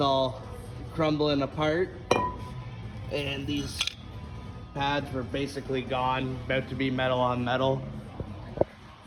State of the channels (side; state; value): both; identical; correlation 1.00